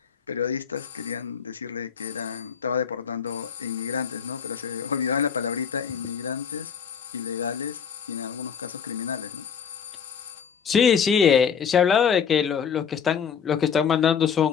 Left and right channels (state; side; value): quieter; right; 7.2 dB